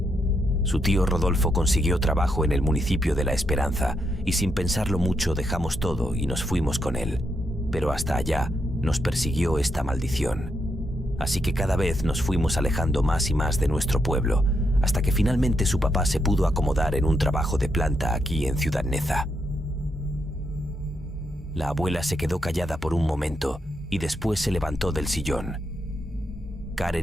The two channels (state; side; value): normal; both; correlation 0.80